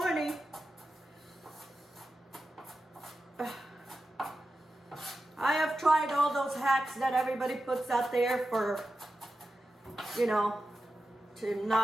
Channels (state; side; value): normal; both; correlation 0.92